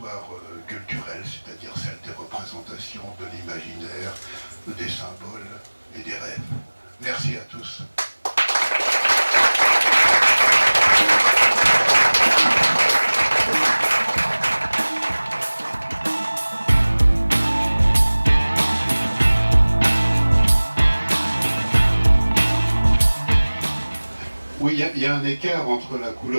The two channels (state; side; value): inverted; both; correlation -1.00